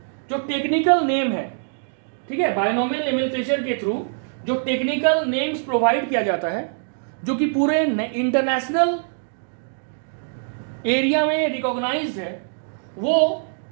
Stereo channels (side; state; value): left; silent; digital silence